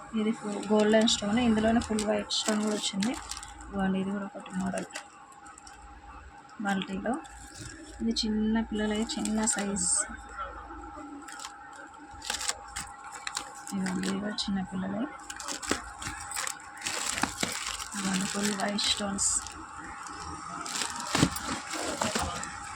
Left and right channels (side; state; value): both; identical; correlation 1.00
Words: ఇది ఫుల్ గోల్డెన్ స్టోన్, ఇందులోనే ఫుల్ వైట్ స్టోన్ కూడా వచ్చింది. ఇవ్వండి ఇది కూడా ఒకటి మోడల్ మల్టీలో. ఇది చిన్న పిల్లలది చిన్న సైజ్, ఇవ్వండి ఇది కూడా చిన్న పిల్లలది. ఇవ్వండి ఫుల్ వైట్ స్టోన్స్.